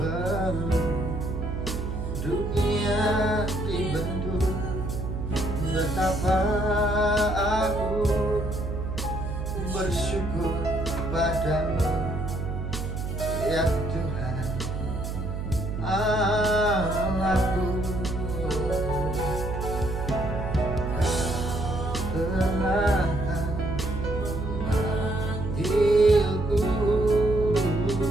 dunia dibentuk. Betapa aku bersyukur padamu, ya Tuhan Allahku. Telah memanggilku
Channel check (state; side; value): noise; right; hum, 4 dB below the sound